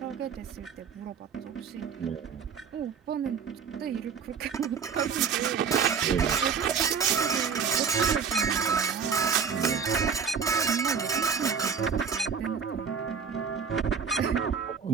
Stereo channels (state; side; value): quieter; left; 6.4 dB